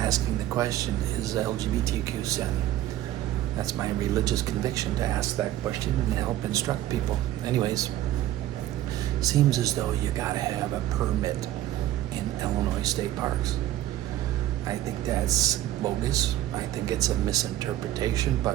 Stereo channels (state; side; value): quieter; left; 13.6 dB